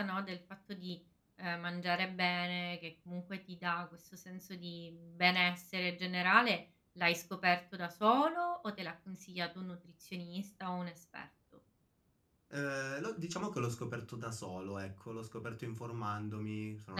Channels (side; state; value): both; identical; correlation 1.00